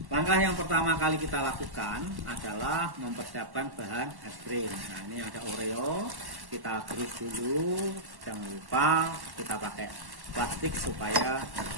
Langkah yang pertama kali kita lakukan adalah mempersiapkan bahan es krim. Nah, ini ada Oreo, kita gerus dulu. Jangan lupa kita pakai plastik supaya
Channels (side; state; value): left; late; 1.1 ms